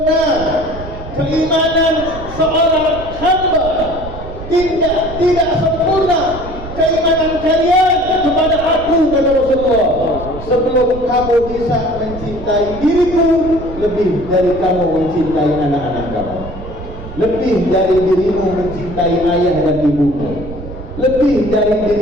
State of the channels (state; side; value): noise; right; rumble, 12 dB below the sound